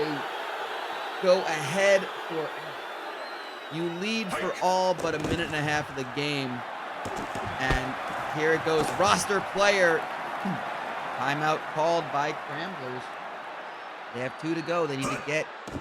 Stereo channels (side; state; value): both; identical; correlation 1.00